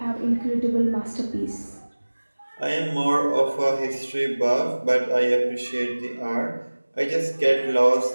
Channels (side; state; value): both; inverted; correlation -1.00